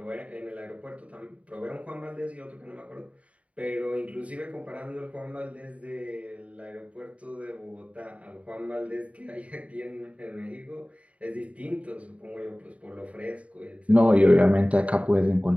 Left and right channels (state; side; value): late; left; 0.066 ms